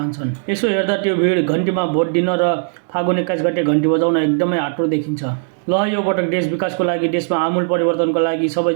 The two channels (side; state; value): left; silent; 67 dB below the other